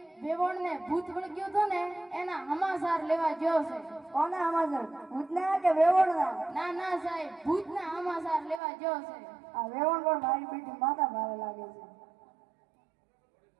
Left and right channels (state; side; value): drops out; left; at 8.6 s